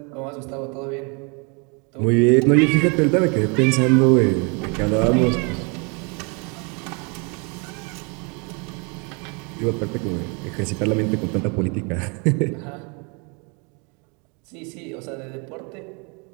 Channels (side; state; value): left; quieter; 33.0 dB